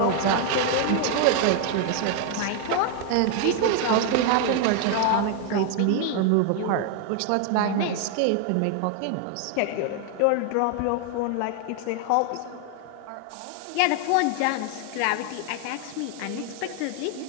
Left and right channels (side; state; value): both; different; correlation 0.00